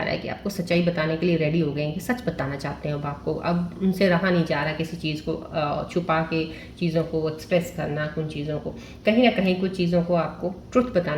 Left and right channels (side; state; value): both; identical; correlation 1.00